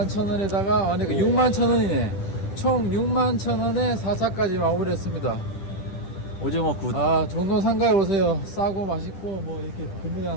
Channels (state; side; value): late; right; 10 ms